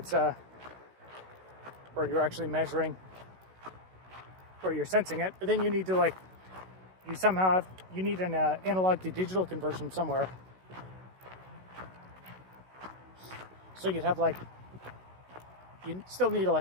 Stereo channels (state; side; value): late; left; 16 ms